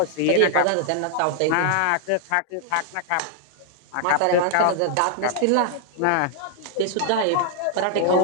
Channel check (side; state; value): both; different; correlation 0.00